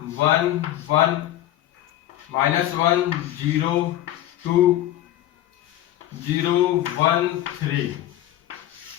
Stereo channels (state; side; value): quieter; right; 13.4 dB